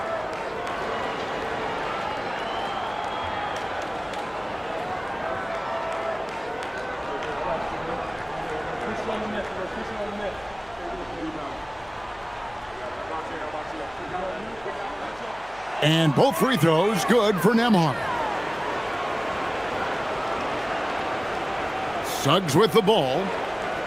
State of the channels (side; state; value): left; noise; hum, 24 dB below the sound